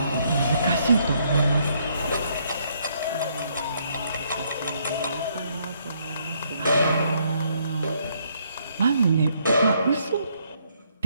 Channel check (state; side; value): inverted; both; correlation -0.70